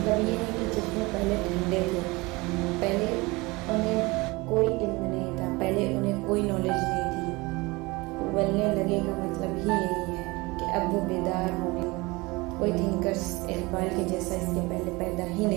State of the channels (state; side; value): quieter; left; 23.7 dB